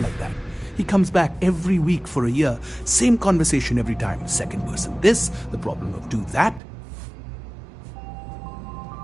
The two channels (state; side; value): drops out; left; at 6.6 s